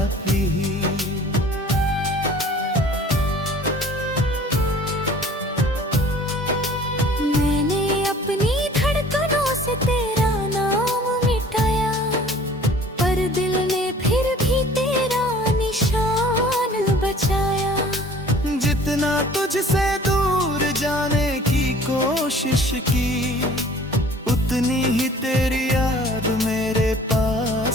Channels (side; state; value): both; normal; correlation 0.50